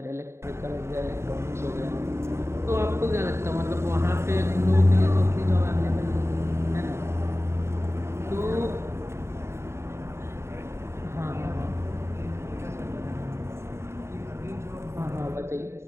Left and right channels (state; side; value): late; left; 0.13 ms